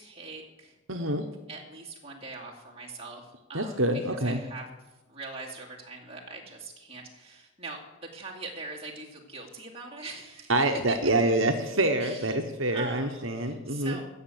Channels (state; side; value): normal; both; correlation -0.07